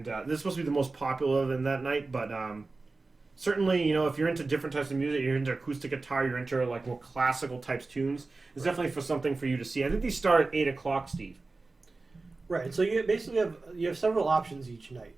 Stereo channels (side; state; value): left; quieter; 3.6 dB